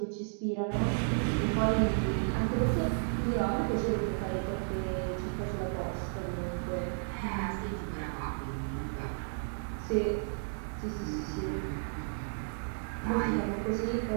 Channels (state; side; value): silent; left; digital silence